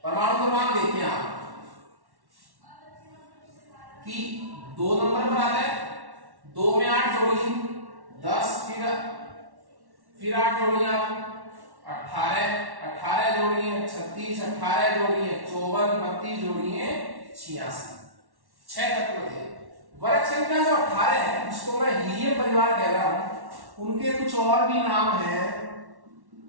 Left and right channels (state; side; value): late; left; 1.1 ms